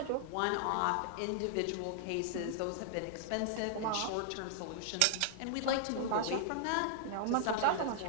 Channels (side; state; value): both; different; correlation -0.01